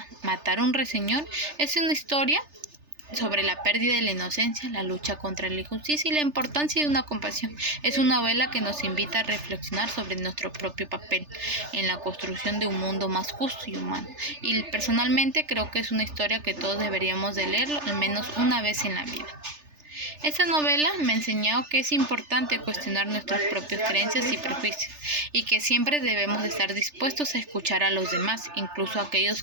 Matar a un ruiseñor es una historia sobre la pérdida de la inocencia, la lucha contra la injusticia y la importancia de una compasión. Es una novela que nos invita a reflexionar sobre nuestro propio papel en la construcción de un mundo más justo y humano. Y personalmente creo que es una historia que todos deberíamos de leerlo al menos una vez en la vida. Esta novela me ha enseñado que es importante cuestionar nuestras propias creencias y prejuicios y que siempre debemos de estar dispuestos a escuchar a los demás, incluso a aquellos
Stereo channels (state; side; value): late; left; 3.4 ms